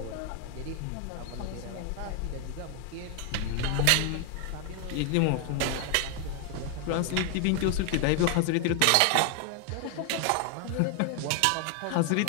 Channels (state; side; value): different; both; correlation 0.00